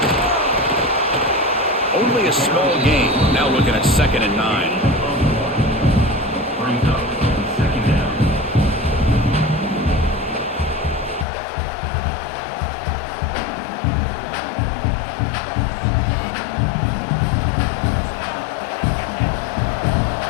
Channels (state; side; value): drops out; right; at 11.2 s